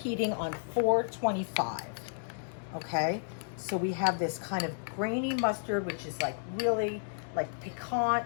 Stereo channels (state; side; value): silent; right; digital silence